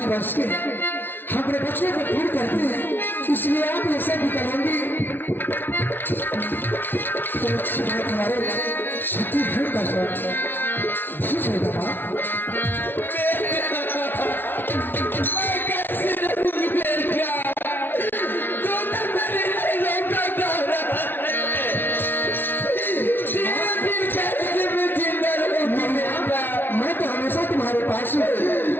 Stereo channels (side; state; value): right; late; 0.10 ms